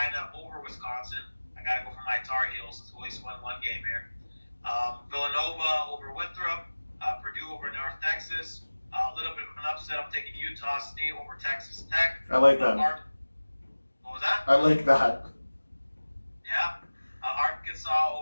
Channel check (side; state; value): both; inverted; correlation -1.00